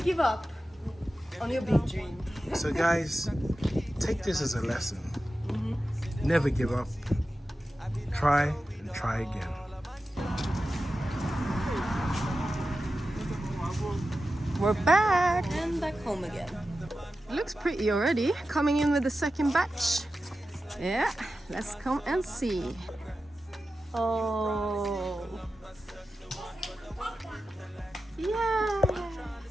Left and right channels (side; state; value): both; normal; correlation 0.93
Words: up on your big dream. So guys, take this as a lesson. Never give up. Try and try again. We're back. And back home again. Looks pretty already. Coming in with the second batch. Yeah, let's come and see. Oh. Yay!